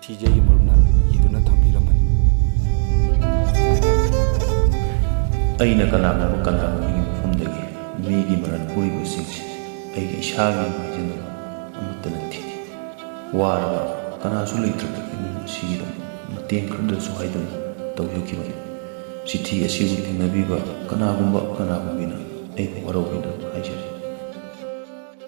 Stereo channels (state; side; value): silent; left; digital silence